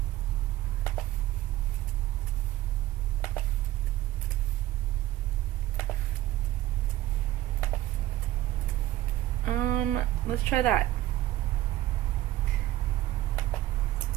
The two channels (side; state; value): left; quieter; 15.3 dB